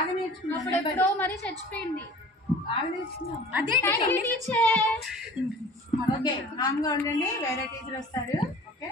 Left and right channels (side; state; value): both; normal; correlation 0.44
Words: నేర్చుకున్నావు. అప్పుడెప్పుడో మరి చచ్చిపోయింది. బాగా నేర్చుకున్నావు. అదే టీచర్. ఓకే, కామ్గా ఉండండి, వేరే టీచర్ వస్తారు. Okay,